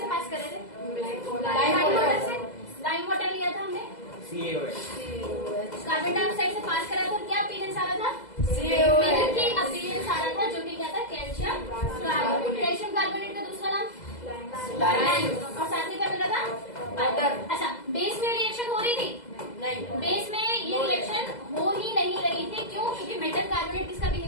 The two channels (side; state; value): right; late; 2.0 ms